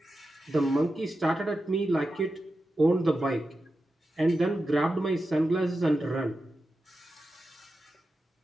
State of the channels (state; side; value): normal; both; correlation 0.91